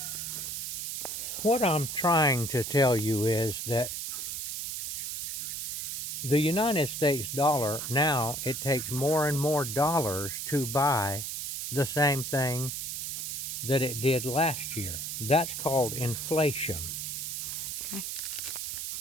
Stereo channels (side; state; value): right; noise; hiss, 4 dB below the sound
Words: What I'm trying to tell you is that the United States dollar, now it takes more and more dollars to buy the same thing that it did last year. That's called inflation. Okay.